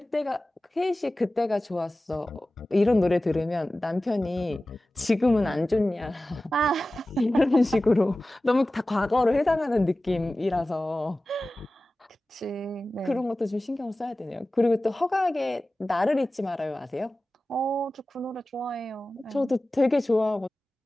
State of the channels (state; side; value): normal; both; correlation 0.96